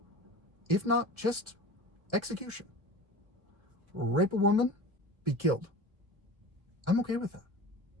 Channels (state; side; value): late; left; 1.5 ms